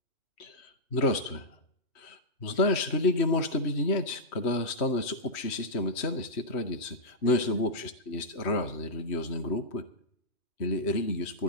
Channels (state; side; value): late; right; 3.1 ms